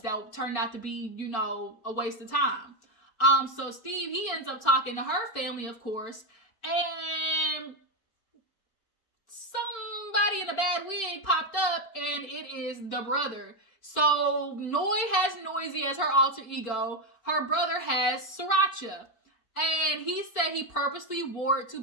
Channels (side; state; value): right; late; 4.3 ms